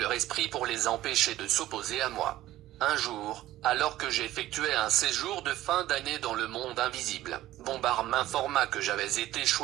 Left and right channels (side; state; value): left; quieter; 14.9 dB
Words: esprit pour les empêcher de s'opposer à moi. Un jour, alors que j'effectuais un séjour de fin d'année dans le monde invisible, Bombard m'informa que j'avais été